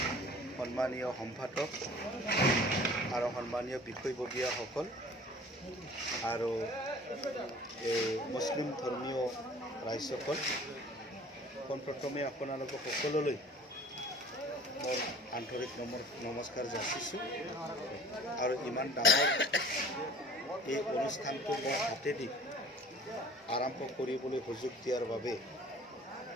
সন্মানীয় সম্পাদক আৰু সন্মানীয় বিষয়ববীয়াসকল আৰু মুছলিম ধৰ্মীয় ৰাইজসকল, পোনপ্ৰথমে আপোনালোকক সকলোলৈ মই আন্তৰিক নমস্কাৰ যাচিছোঁ আৰু ইমান ডাঙৰ এই অনুষ্ঠানটো মই হাতেদি আৰম্ভ কৰিবলৈ সুযোগ দিয়াৰ বাবে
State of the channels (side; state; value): both; normal; correlation 0.47